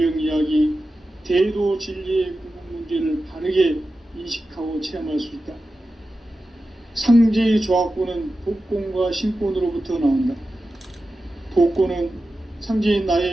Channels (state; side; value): normal; both; correlation 0.93